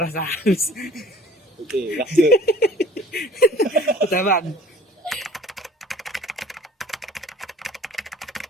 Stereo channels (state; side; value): normal; both; correlation 0.49